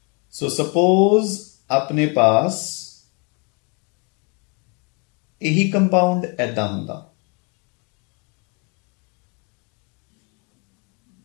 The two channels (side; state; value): right; quieter; 33.2 dB